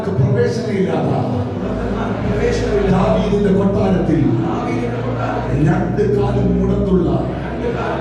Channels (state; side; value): identical; both; correlation 1.00